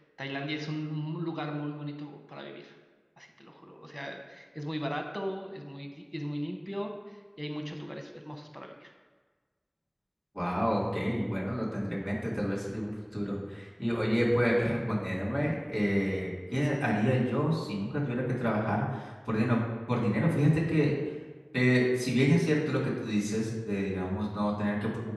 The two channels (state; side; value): identical; both; correlation 1.00